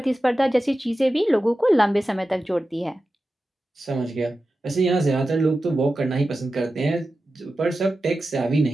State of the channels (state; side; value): normal; both; correlation 0.93